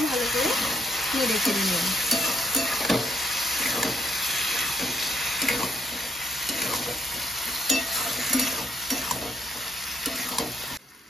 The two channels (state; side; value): normal; both; correlation 0.72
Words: ভালো করে নেড়ে চেড়ে নেব।